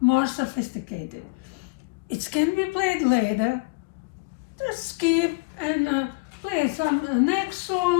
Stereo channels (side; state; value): right; quieter; 28.5 dB